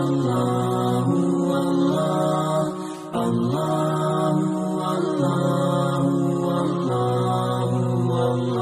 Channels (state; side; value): identical; both; correlation 1.00